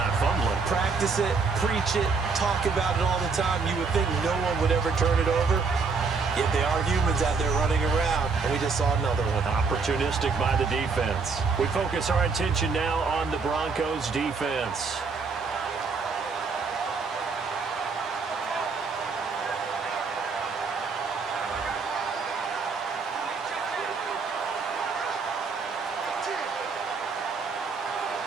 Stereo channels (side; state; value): left; quieter; 4.7 dB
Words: fumbling. Practice it, preach it, talk about it all the time. You would think no one would ever turn it over. Yet they are humans out there running around, and we just saw another one. Opportunistic by the defense. We focus our attention now on the Broncos defense.